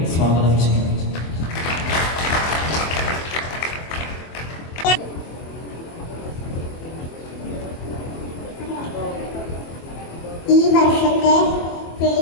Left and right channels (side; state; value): right; late; 24 ms